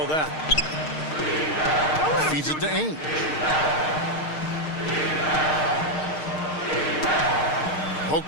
that. Feeds it to Ainge.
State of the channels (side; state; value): right; late; 6.5 ms